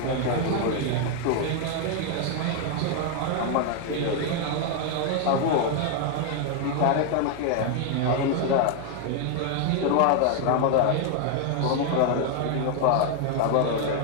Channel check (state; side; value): different; both; correlation 0.00